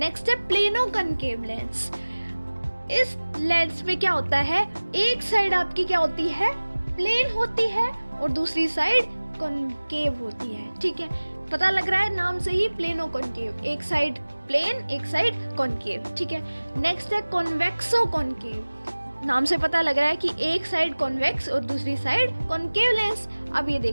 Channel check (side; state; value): both; inverted; correlation -1.00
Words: है प्लेनो कॉनकेव लेंस. इस लेंस में क्या होता है, एक साइड आपकी क्या होती है, प्लेन होती है और दूसरी साइड कॉनकेव होती है. ठीक है, पता लग रहा है नाम से ही, प्लेनो कॉनकेव, एक साइड प्लेन एक साइड कॉनकेव. ठीक है, नेक्स्ट है कॉन्वेक्सो कॉनकेव. नाम से पता लग रहा है कि एक साइड कॉन्वेक्स और दूसरी साइड कॉनकेव लेंस. अब ये